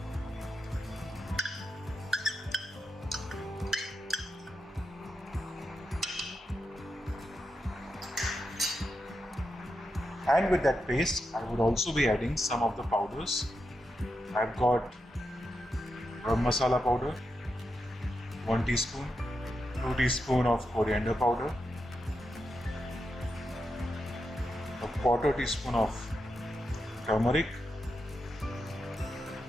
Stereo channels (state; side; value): normal; both; correlation 0.86